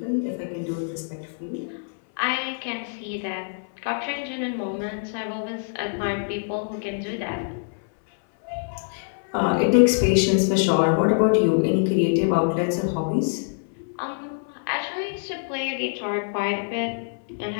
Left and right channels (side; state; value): right; silent; 62 dB below the other